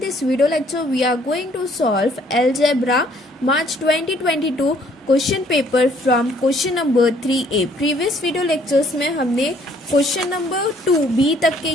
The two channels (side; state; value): both; normal; correlation 0.62